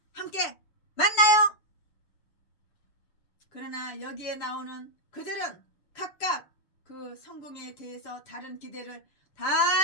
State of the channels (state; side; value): late; right; 6.8 ms